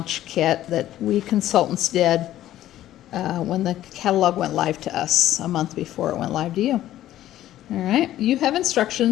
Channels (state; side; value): quieter; right; 13.3 dB